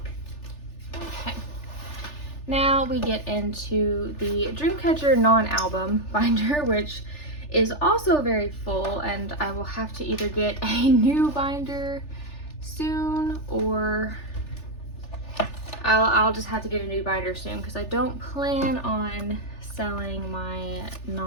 Okay, now we get into the Dreamcatcher non-album binder, which is also very full, and I will have to either get a new binder soon, or I'll just have to get a new binder soon, because I don't plan on selling my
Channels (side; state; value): right; late; 3.4 ms